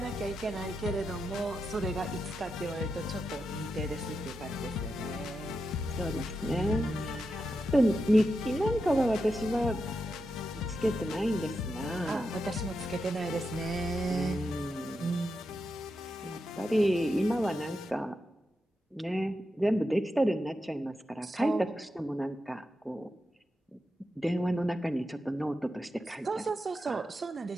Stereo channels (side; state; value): both; normal; correlation 0.87